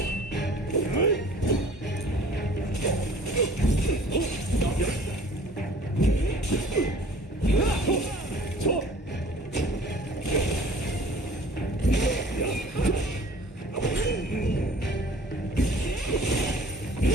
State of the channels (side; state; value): both; normal; correlation 0.49